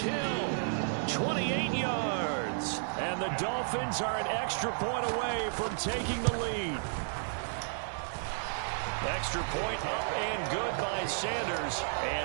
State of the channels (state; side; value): silent; left; 56 dB below the other